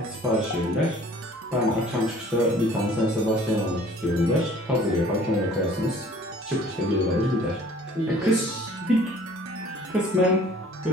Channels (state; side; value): normal; both; correlation 0.52